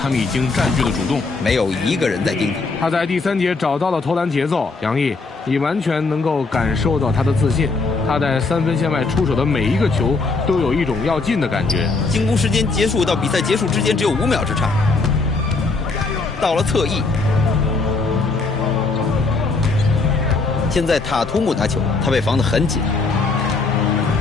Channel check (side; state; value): right; quieter; 3.9 dB